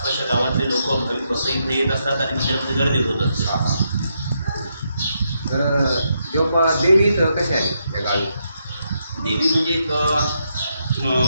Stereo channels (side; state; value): both; inverted; correlation -0.80